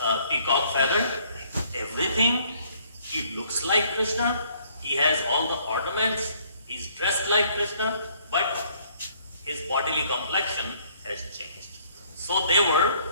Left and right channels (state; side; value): inverted; both; correlation -0.62